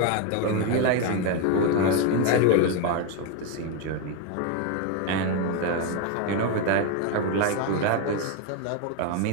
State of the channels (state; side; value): different; both; correlation 0.02